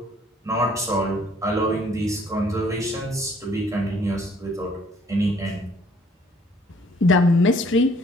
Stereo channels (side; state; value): both; normal; correlation 0.60